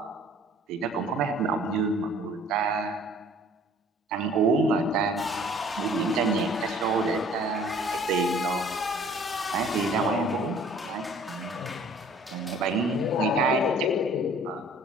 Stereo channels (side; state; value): both; normal; correlation 0.53